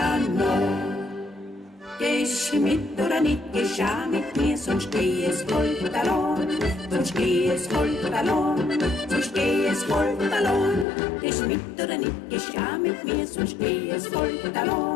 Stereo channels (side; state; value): right; drops out; at 10.9 s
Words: Nacht. Gehst du mit oder nicht, gehst auch mit mir, sonst geh es halt allein, sonst geh es halt allein, sonst geh es halt allein. Gehst du mit oder nicht, gehst auch mit mir, sonst geh es halt